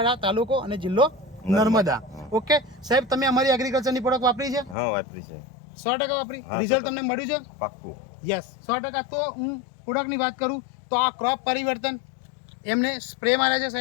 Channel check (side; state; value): right; drops out; at 4.8 s